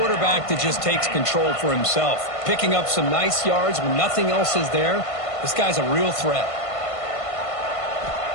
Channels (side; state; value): right; late; 1.5 ms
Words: that just takes control for himself. Picking up some nice yards when nothing else is there. This guy's a real threat.